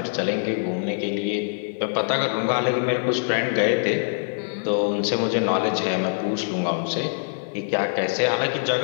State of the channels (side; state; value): right; silent; 63 dB below the other